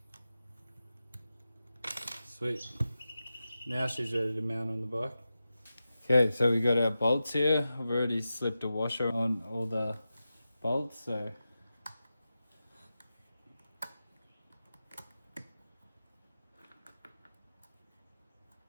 Sweet. Now she's ready to mount on the bike. Okay, so we got our bolts here. I've already slipped a washer on all the bolts, so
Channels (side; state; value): both; inverted; correlation -0.92